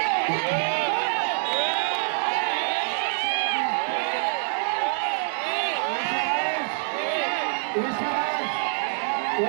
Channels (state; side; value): silent; left; 61 dB below the other